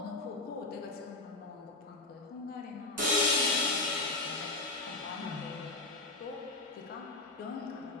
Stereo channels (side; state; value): right; quieter; 3.0 dB